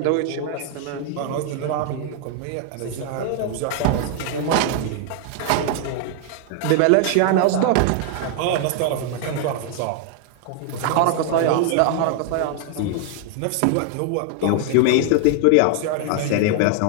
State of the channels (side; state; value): both; different; correlation 0.00